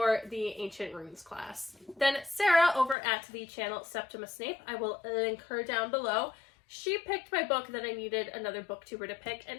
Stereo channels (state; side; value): drops out; right; at 3.0 s